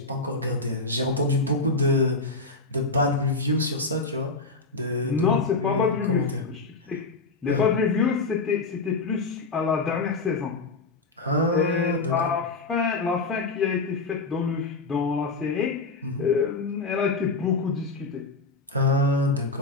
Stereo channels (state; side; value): quieter; right; 3.7 dB